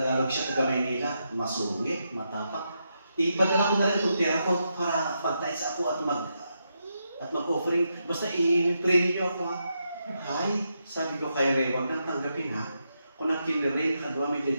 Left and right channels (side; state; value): both; inverted; correlation -0.83